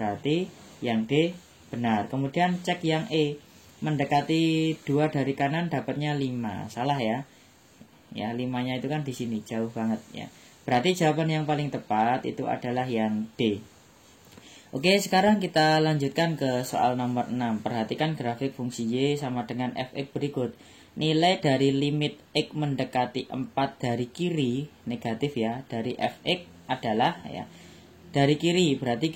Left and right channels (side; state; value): both; identical; correlation 1.00